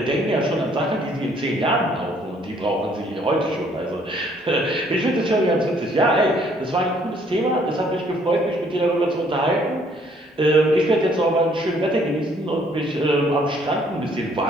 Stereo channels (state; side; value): normal; both; correlation 0.63